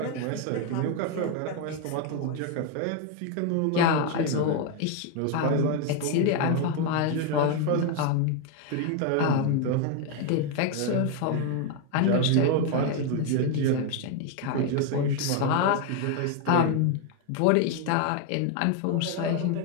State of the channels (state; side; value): different; both; correlation 0.01